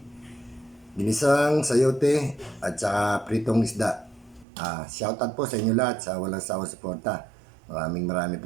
ginisang sayote at saka pritong isda. Shoutout po sa inyo lahat sa walang sawang suporta. Maraming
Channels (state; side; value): drops out; left; at 4.5 s